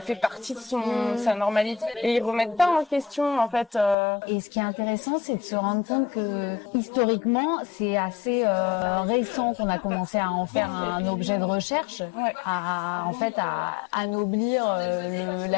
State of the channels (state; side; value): drops out; right; at 4.0 s